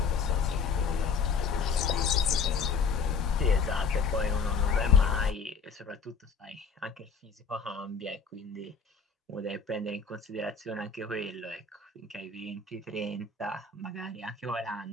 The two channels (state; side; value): quieter; right; 5.3 dB